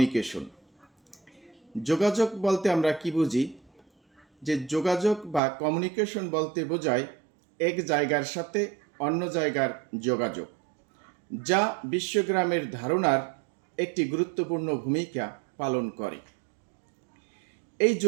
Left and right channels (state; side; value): drops out; left; at 5.4 s